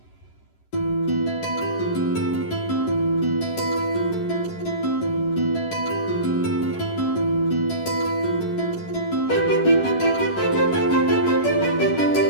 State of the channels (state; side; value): late; right; 11 ms